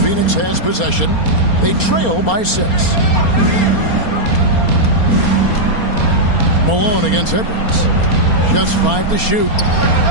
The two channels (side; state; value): right; late; 4.3 ms